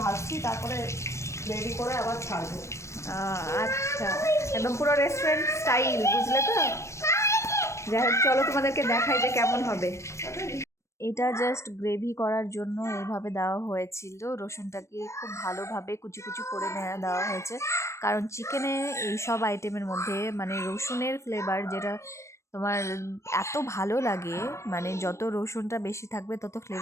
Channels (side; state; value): right; late; 0.14 ms